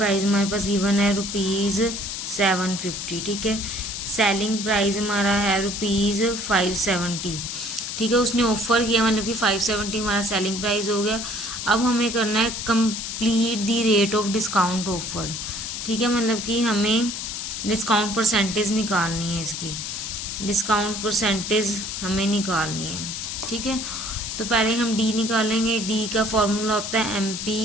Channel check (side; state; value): left; noise; hiss, 5 dB below the sound